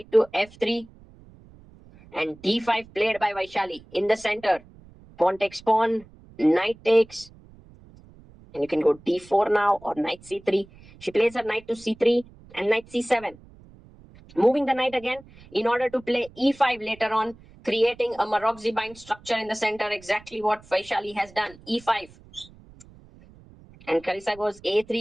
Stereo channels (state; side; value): noise; right; rumble, 23 dB below the sound